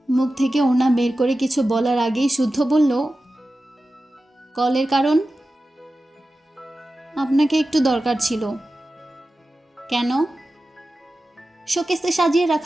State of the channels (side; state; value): both; normal; correlation 0.94